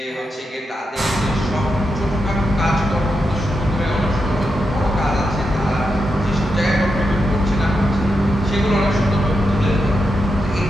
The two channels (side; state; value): both; normal; correlation 0.86